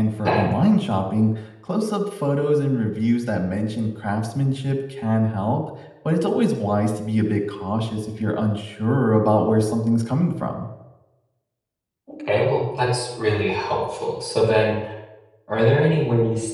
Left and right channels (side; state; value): both; identical; correlation 1.00